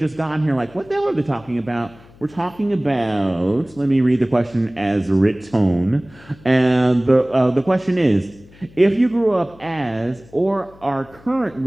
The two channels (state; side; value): noise; left; hum, 24 dB below the sound